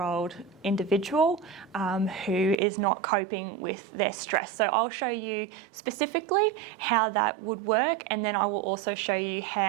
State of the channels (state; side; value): drops out; left; at 2.6 s